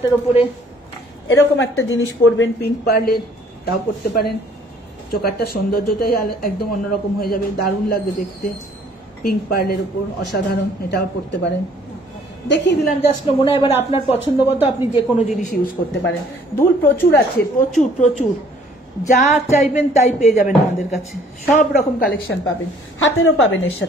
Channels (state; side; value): normal; both; correlation 0.58